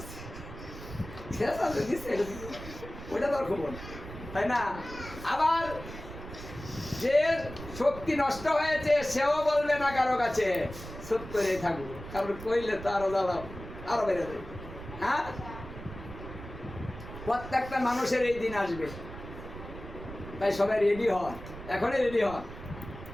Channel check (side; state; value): right; noise; rumble, 12 dB below the sound